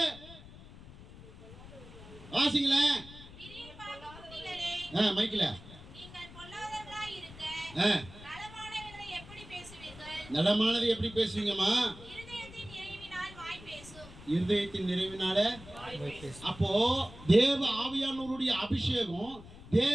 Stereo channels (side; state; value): left; noise; rumble, 17 dB below the sound